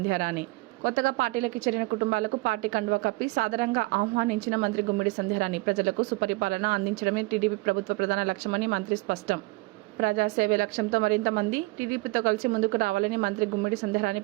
కొత్తగా పార్టీలోకి చేరిన కుటుంబాలకు పార్టీ కండువా కప్పి సాదరంగా ఆహ్వానించిన మంత్రి గుమ్మిడి సంధ్యారాణి ప్రజలకు సుపరిపాలన అందించడమే టీడీపీ ప్రభుత్వ ప్రధాన లక్ష్యమని మంత్రి స్పష్టం. ప్రజాసేవే లక్ష్యంతో మరింత మంది టీడీపీతో కలిసి ముందుకు రావాలని మంత్రి గుమ్మిడి సంధ్యారాణి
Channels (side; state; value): left; quieter; 23.2 dB